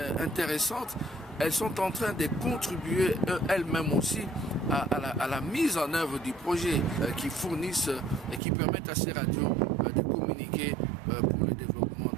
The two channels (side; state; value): left; drops out; at 8.4 s